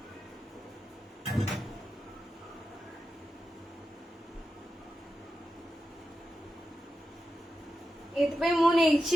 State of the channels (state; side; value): normal; both; correlation 0.90